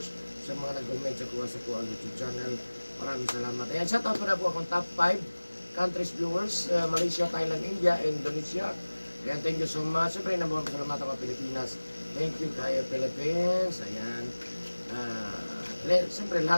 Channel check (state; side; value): inverted; both; correlation -1.00